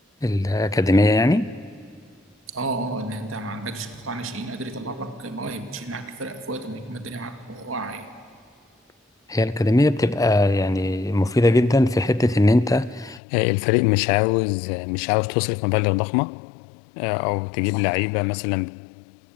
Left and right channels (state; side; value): drops out; right; at 13.2 s